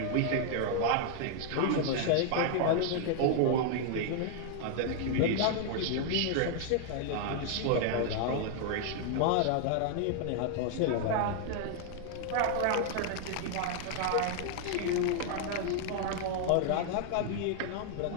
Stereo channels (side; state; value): both; different; correlation 0.00